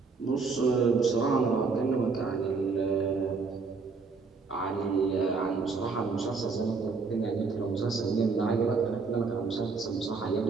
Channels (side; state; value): left; quieter; 4.6 dB